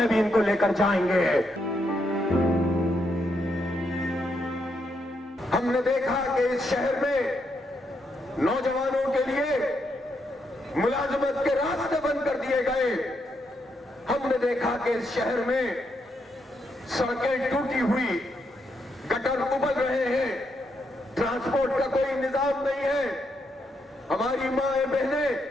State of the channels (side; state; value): both; normal; correlation 0.79